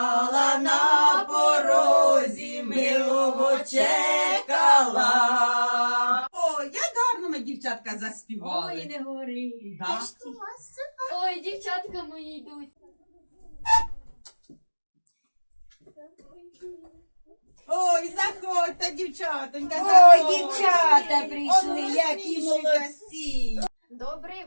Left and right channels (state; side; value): inverted; both; correlation -1.00